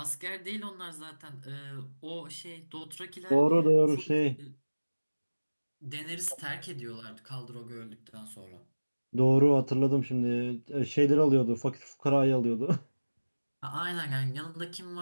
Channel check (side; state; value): both; inverted; correlation -1.00